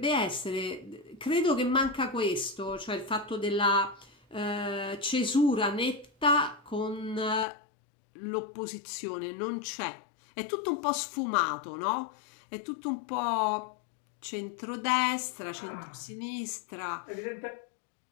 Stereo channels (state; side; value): drops out; right; at 7.5 s